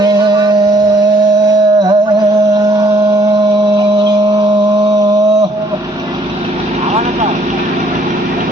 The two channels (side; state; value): both; normal; correlation 0.63